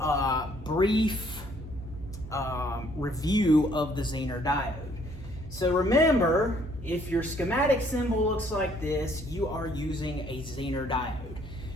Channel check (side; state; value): both; normal; correlation 0.64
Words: brief review of the Zener diode. So remember, if your schematic symbol looks like this, you are using a Zener diode.